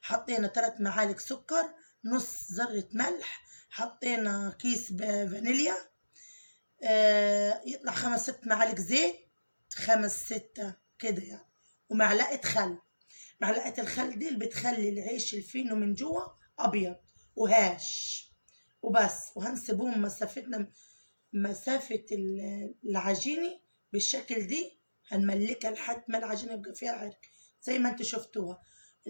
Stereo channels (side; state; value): both; inverted; correlation -1.00